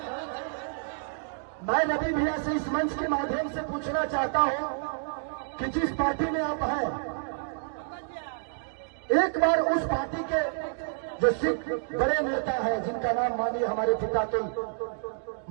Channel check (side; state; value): left; silent; digital silence